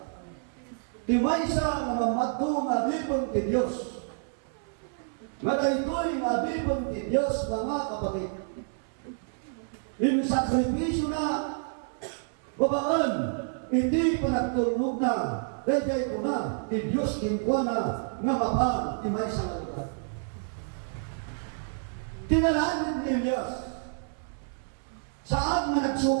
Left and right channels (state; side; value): silent; left; 59 dB below the other